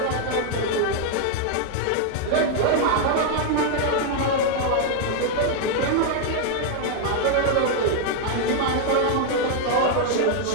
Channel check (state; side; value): different; both; correlation 0.00